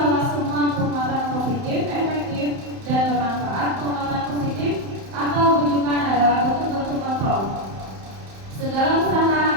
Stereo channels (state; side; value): late; left; 31 ms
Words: semua penguatan positif, efektif, dan bermanfaat, penguatan positif atau bujukan adalah bentuk-bentuk kontrol. Segala usaha